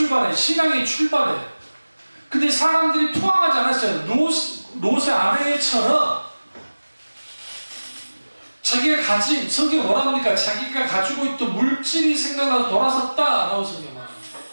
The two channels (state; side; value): inverted; both; correlation -1.00